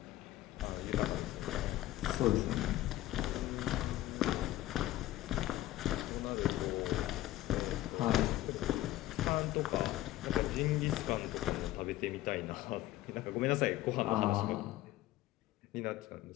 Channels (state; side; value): quieter; right; 15.4 dB